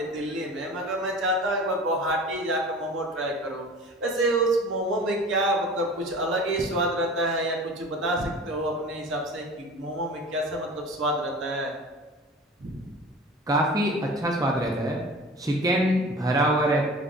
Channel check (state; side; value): normal; both; correlation 0.39